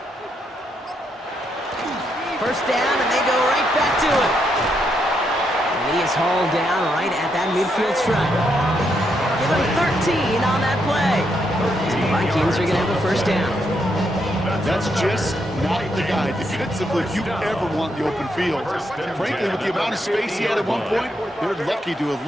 First down, and they go right back to it. And he is hauled down right at that midfield stripe. Give him 13 on that play. And the Vikings are going to have a first down. That's just not the guy defensively you ever want in the open field. Frankly, with the amount of space he had at one point, they're lucky to have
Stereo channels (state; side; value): normal; both; correlation 0.78